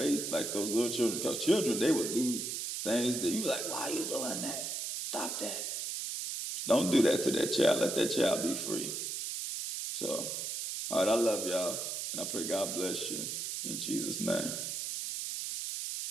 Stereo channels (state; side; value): noise; right; hiss, 3 dB below the sound